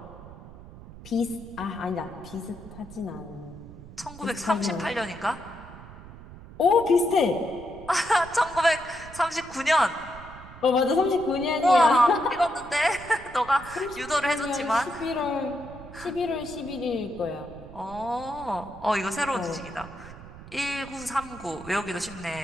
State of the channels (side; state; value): right; noise; rumble, 16 dB below the sound